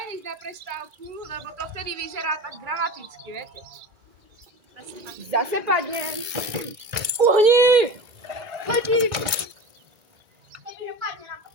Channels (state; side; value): late; left; 1.9 ms